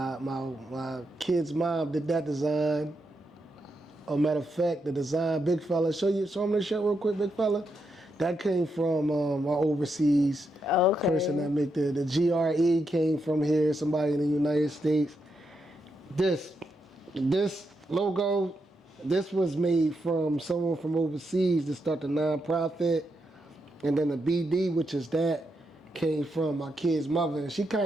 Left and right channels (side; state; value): both; normal; correlation 0.83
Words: kid's mom did that design. As a matter of fact, the design, big fella, show him this shit real quick, big fella. That came from my overseas person that made the GRE came from here, somebody in the United States. This logo, this was made from someone from overseas to start the nonprofit. And then the BD, which is that, came from my kid's mother. And she